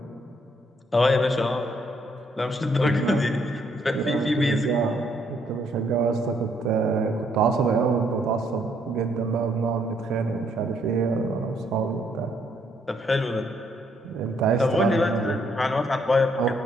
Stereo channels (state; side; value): normal; both; correlation 0.70